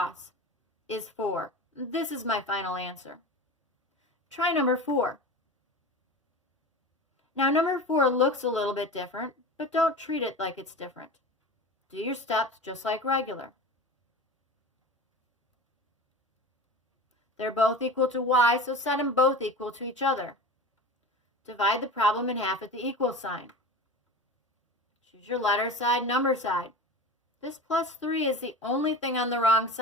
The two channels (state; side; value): normal; both; correlation 0.32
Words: is 4. This is my final answer. Try number 4. Now number 4 looks a little bit different, but don't treat it like it's different. Do your steps just like regular. They're both equal to y, so set them both equal to each other. Divide the problem in half at the equal sign. Choose your letter side, number side. This plus 3 is the only thing on the wrong